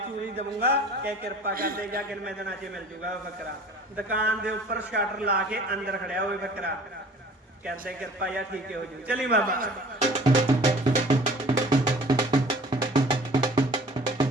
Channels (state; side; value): normal; both; correlation 0.48